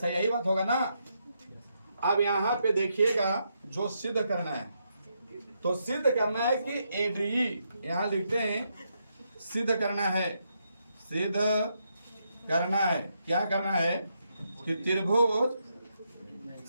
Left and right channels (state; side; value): inverted; both; correlation -0.80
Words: यही बात होगा ना? अब यहाँ पे देखिएगा जो सिद्ध करना है तो सिद्ध करना है कि ए डी ई यहाँ लिखते हैं सिद्ध करना है। क्या करना है कि त्रिभुज